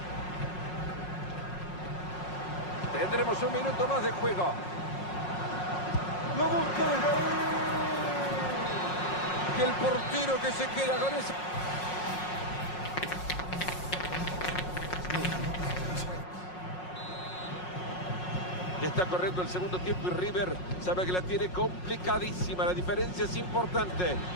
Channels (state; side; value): late; right; 5.5 ms